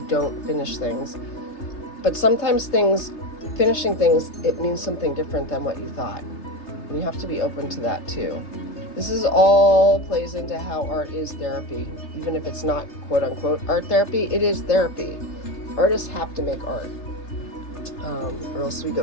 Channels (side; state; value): right; late; 3.3 ms